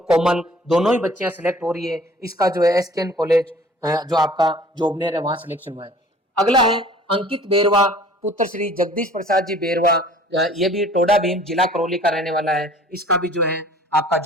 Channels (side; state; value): both; normal; correlation 0.50